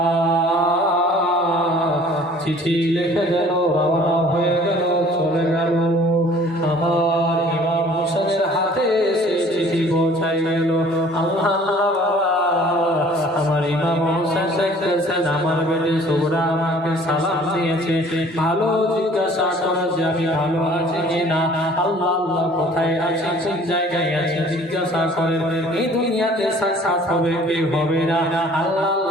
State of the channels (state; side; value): normal; both; correlation 0.52